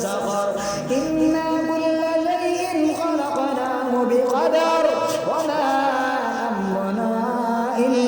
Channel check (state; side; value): identical; both; correlation 1.00